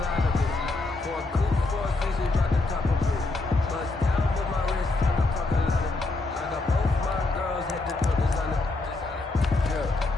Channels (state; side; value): quieter; right; 3.2 dB